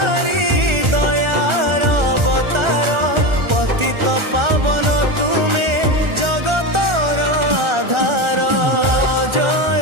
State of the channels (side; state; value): left; late; 1.4 ms